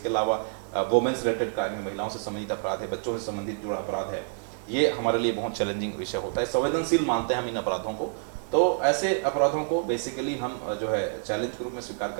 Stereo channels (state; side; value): silent; left; digital silence